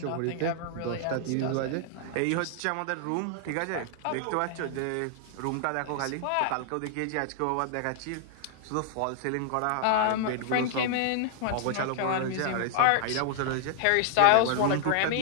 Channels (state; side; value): different; both; correlation 0.00